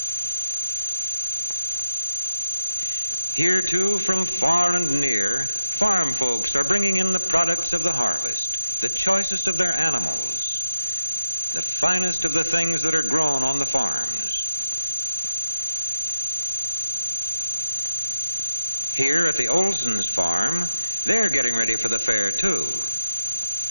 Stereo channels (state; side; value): inverted; both; correlation -0.90